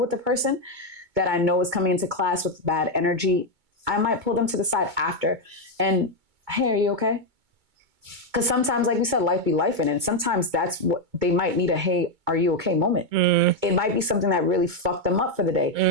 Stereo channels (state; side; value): late; left; 2.2 ms